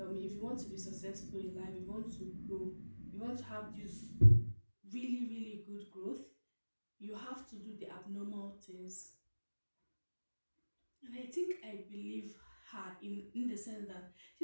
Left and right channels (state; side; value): inverted; both; correlation -1.00